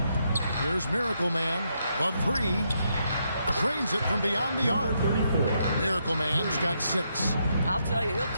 Here's Miracle Man. The 3. Trains it from beyond the arc. Miracle Man's got 6. I'll tell you, he'll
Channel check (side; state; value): both; inverted; correlation -0.78